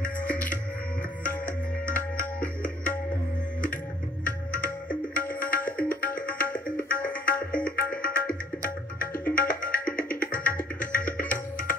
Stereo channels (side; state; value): both; normal; correlation 0.58